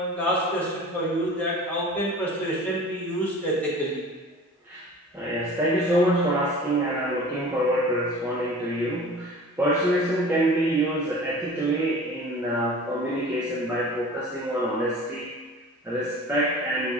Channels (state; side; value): normal; both; correlation 0.41